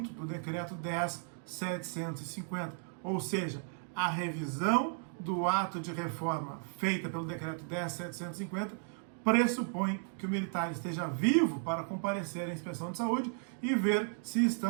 do Decreto 10.750. Ou seja, a revisão do ato de reforma feita pelo Decreto 10.750 pressupõe que o militar esteja vivo para comparecer à inspeção de saúde e ver se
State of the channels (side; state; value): left; silent; 55 dB below the other